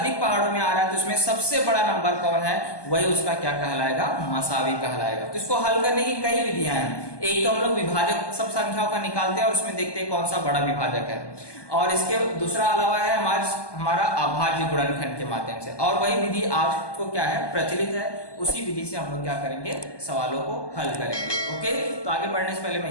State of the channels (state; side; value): late; right; 1.2 ms